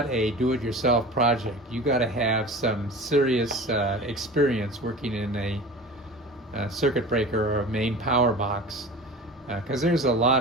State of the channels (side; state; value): both; normal; correlation 0.35